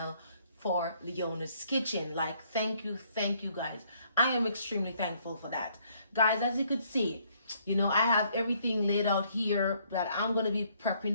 for Leona's Kitchen. Like, thank you guys. I am extremely thankful for that. Guys, as you could see, you know, I have everything laid out here that I'm going to be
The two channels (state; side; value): inverted; both; correlation -0.67